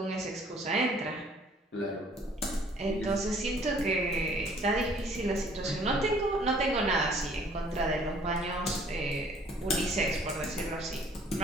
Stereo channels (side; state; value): both; normal; correlation 0.57